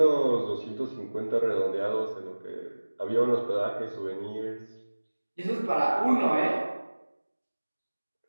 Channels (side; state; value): both; inverted; correlation -1.00